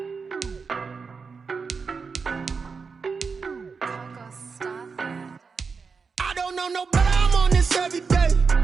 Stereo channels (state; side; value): quieter; left; 5.1 dB